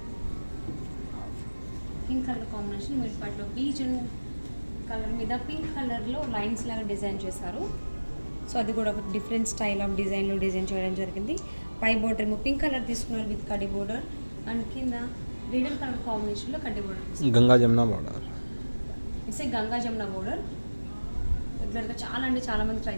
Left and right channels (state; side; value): inverted; both; correlation -1.00